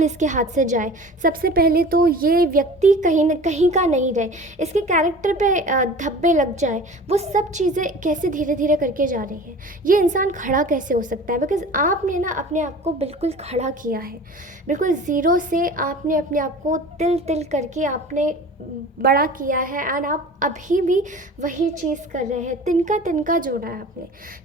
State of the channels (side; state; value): both; normal; correlation 0.40